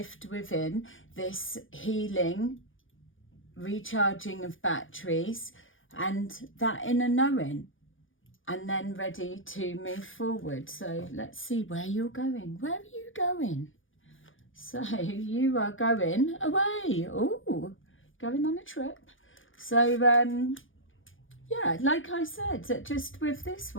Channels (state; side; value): late; right; 0.58 ms